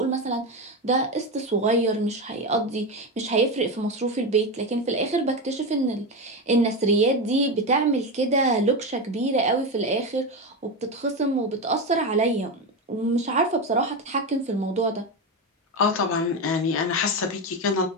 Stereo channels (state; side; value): normal; both; correlation 0.15